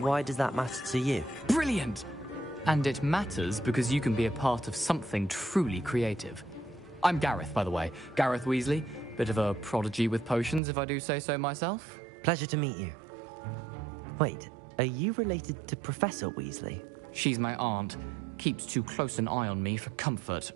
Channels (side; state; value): left; drops out; at 10.6 s